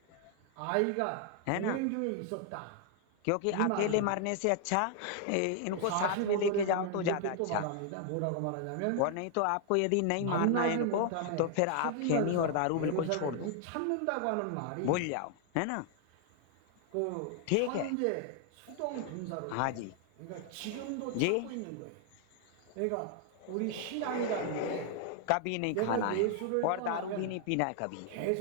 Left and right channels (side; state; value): both; different; correlation 0.00